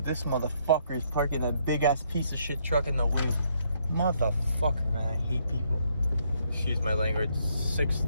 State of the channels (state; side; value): inverted; both; correlation -0.71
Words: This motherfucker is parking that big ass piece of shit truck in the way. Motherfucker, man, I hate people. Excuse my language.